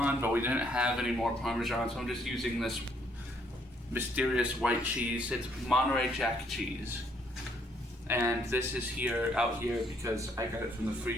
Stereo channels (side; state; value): both; normal; correlation 0.68